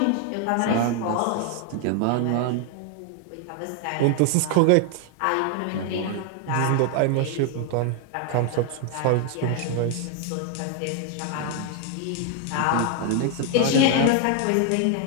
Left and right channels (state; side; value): different; both; correlation 0.00